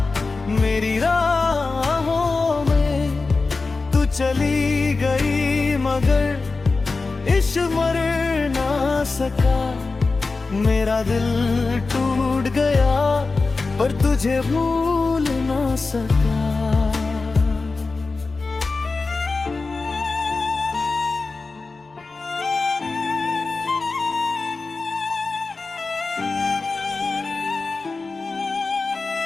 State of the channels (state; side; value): quieter; right; 3.9 dB